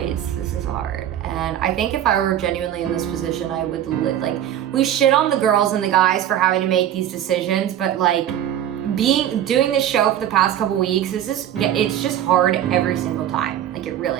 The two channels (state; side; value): quieter; left; 11.0 dB